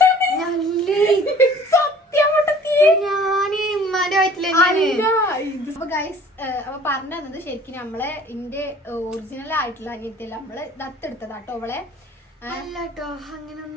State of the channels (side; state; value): both; normal; correlation 0.50